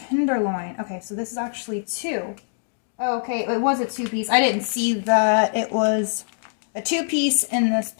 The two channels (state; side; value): silent; right; digital silence